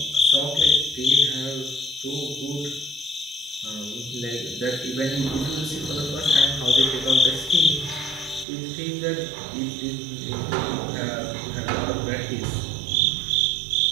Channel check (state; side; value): drops out; left; at 8.5 s